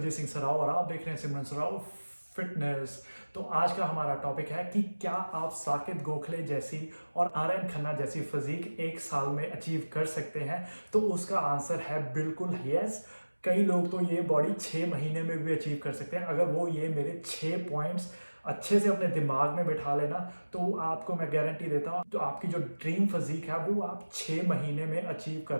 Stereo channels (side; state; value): both; inverted; correlation -1.00